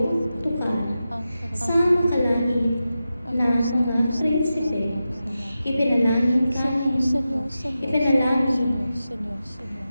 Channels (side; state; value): both; inverted; correlation -0.92